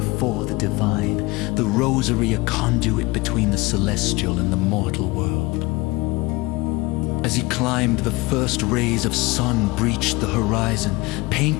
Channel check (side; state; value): right; quieter; 22.6 dB